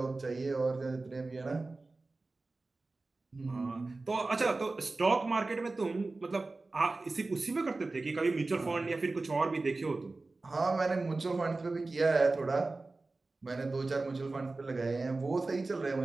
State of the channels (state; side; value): quieter; left; 3.4 dB